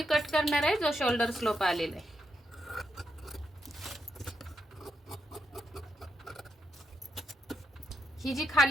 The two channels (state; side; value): normal; both; correlation 0.82